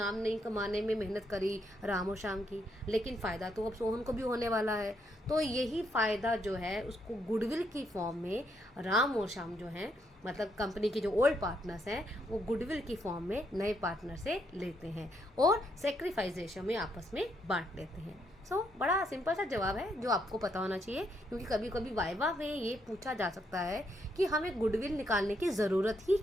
नहीं कमाने में मेहनत करी राम और श्याम की, लेकिन फ़ायदा तो अब सोहन को भी होने वाला है। तो यही फ़ायदा जो है उसको गुडविल की फॉर्म में राम और श्याम जो हैं, मतलब कंपनी के जो ओल्ड पार्टनर्स हैं, वो गुडविल की फॉर्म में नए पार्टनर से लेते हैं और सेक्रीफाइस रेशो में आपस में बांट लेते हैं। बड़ा सिंपल सा जवाब है जो आपको पता होना चाहिए, क्योंकि कभी कभी वाइवा में ये पूछा जा सकता है कि हमें गुडविल निकालने की ज़रूरत ही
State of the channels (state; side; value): normal; both; correlation 0.76